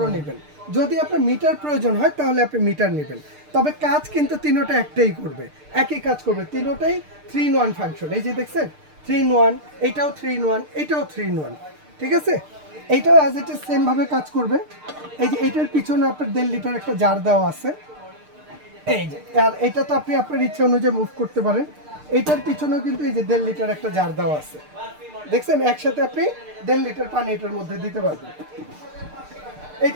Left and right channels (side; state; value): left; late; 6.6 ms